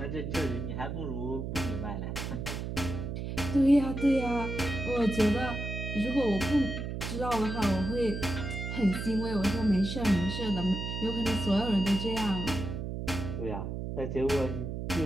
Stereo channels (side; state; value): right; noise; hum, 5 dB below the sound